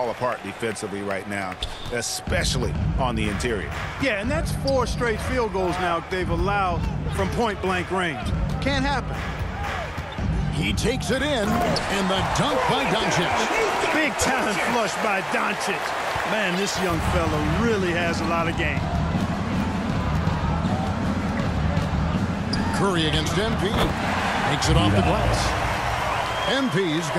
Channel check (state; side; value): identical; both; correlation 1.00